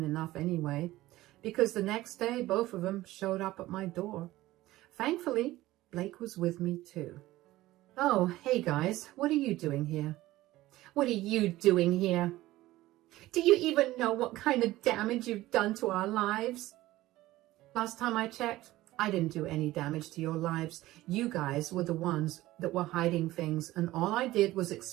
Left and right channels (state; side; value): quieter; left; 16.8 dB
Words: enough anyway, because the next day, both of them showed up at my door. Thankfully, Blake was with me too. Oh, hey guys, what are you doing here? What are you doing here? Do you even know what kind of damage you've done to our lives? Last time I checked, I didn't do any damage to your lives. You guys were the ones that were hiding things, and all I did was